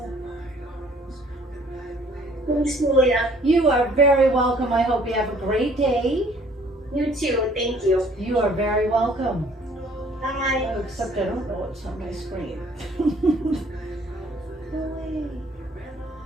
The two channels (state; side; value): normal; both; correlation 0.58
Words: Thanks, Julia. You are very welcome. I hope you have a great day. You too. Thank you. You are very welcome. Bye. Oh, except I don't know what's on my screen. Go away.